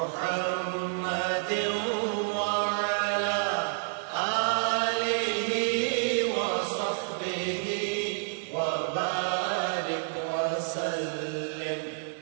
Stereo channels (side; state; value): left; silent; digital silence